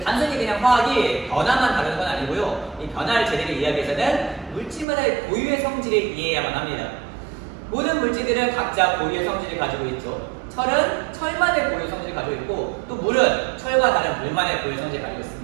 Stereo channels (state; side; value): drops out; left; at 4.9 s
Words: 단순히 그냥 화학이 변화만 다루는 건 아니고요. 이 변화를 제대로 이해하기 위해서는 물질마다의 고유의 성질을 이해해야만 합니다. 모든 물질들은 각자 고유의 성질을 가지고 있죠. 철은 철만의 고유 성질을 가지고 있고, 또 물은 철과 다른 물만의 고유 성질을 가지고